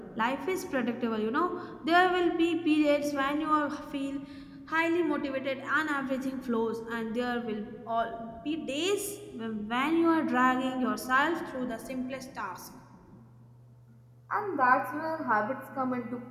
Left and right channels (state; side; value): identical; both; correlation 1.00